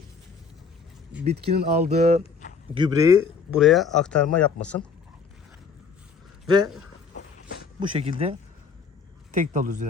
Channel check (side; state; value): right; quieter; 5.4 dB